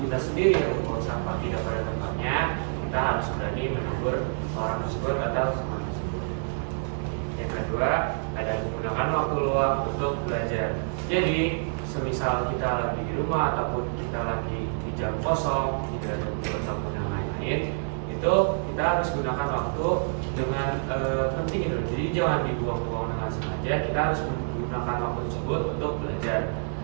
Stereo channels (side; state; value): left; silent; 59 dB below the other